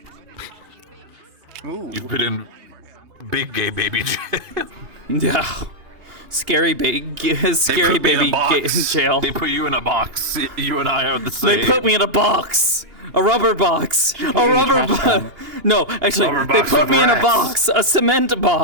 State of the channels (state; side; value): late; left; 2.8 ms